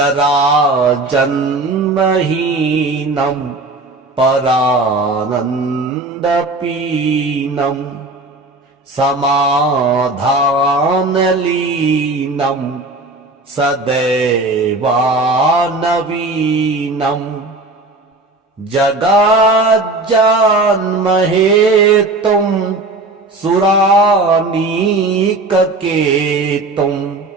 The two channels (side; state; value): left; quieter; 3.2 dB